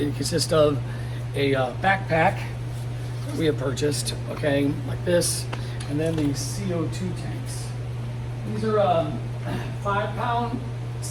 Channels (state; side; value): identical; both; correlation 1.00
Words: consists of a backpack that we have purchased, okay, like this, and then these CO2 tanks. These are 5-pound